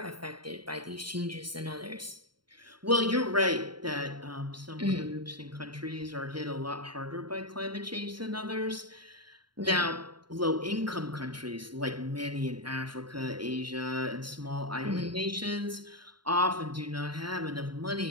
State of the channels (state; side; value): late; left; 0.72 ms